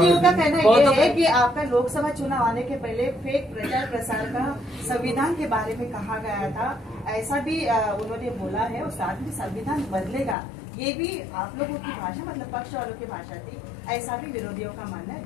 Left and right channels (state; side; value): drops out; right; at 10.4 s